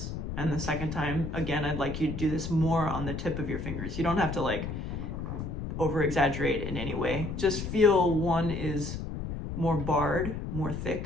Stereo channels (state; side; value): noise; left; rumble, 5 dB below the sound